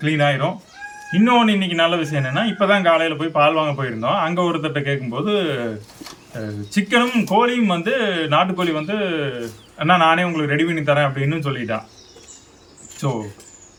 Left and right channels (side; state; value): both; identical; correlation 1.00